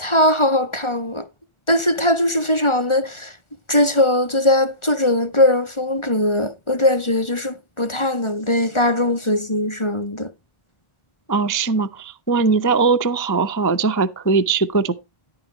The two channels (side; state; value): right; late; 1.4 ms